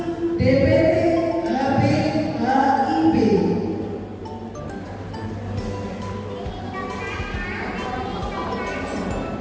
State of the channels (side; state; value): both; identical; correlation 1.00